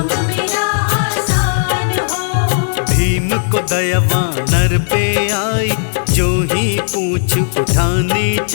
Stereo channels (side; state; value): right; silent; digital silence